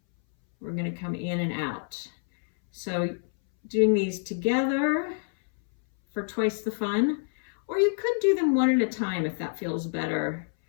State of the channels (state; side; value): silent; right; 60 dB below the other